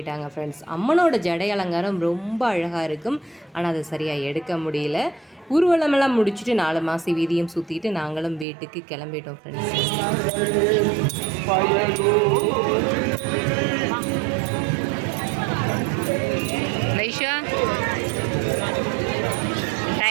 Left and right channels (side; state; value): left; drops out; at 8.5 s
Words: ஃப்ரெண்ட்ஸ். அம்மனோட ஜடை அலங்காரம் ரொம்ப அழகாக இருக்கும், ஆனால் அதை சரியாக எடுக்க முடியல. ஊர்வலமெல்லாம் முடிச்சுட்டு 4 மாசி வீதியும் சுற்றிட்டு நாங்களும் வீட்டுக்கு கிளம்பிட்டோம் ஃப்ரெண்ட்ஸ். வைஷா